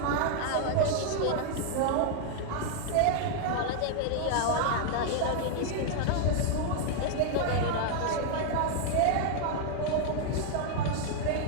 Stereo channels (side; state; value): both; different; correlation 0.00